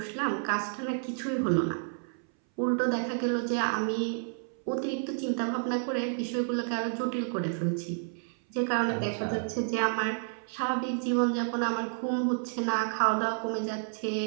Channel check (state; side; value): silent; left; 58 dB below the other